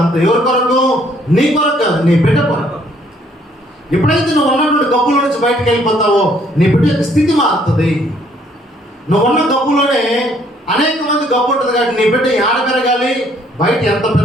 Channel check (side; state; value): both; normal; correlation 0.64